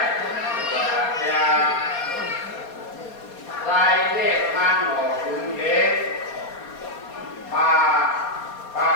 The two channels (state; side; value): late; right; 4.2 ms